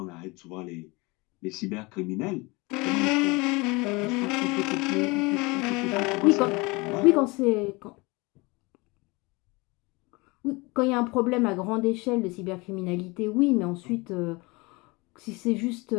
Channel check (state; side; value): quieter; right; 25.3 dB